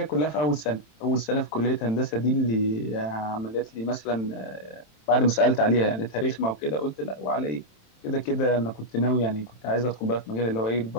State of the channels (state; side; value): late; right; 27 ms